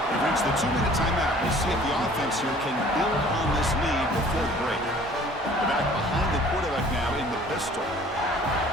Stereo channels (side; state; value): both; normal; correlation 0.52